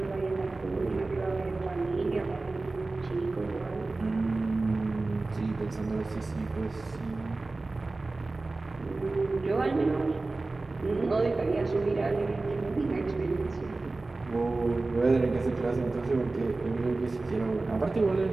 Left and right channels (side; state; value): left; quieter; 3.3 dB